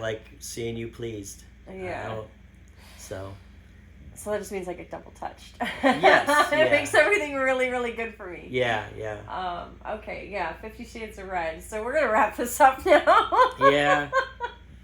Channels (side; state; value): both; identical; correlation 1.00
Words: seeing you pleased. Yeah. So that just means I get double touched. Yes. It makes everything really, really good for me. Yeah. Okay, yeah, 50 Shades of Red. So we're going to wrap this up now. Yeah.